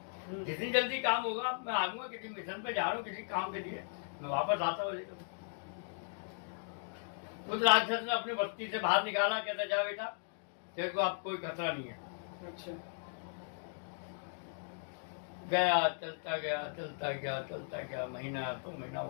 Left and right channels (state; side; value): silent; right; digital silence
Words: जितनी जल्दी काम होगा मैं आऊंगा। किसी मिशन पे जा रहा हूँ, किसी काम के लिए, मैं वापस आता हूँ। उस राक्षस ने अपनी बस्ती से बाहर निकाला। कहता जा बेटा, तेरे को अब कोई खतरा नहीं है। अच्छा। गया, चलता गया चलता गया चलता गया, महीना 2 महीना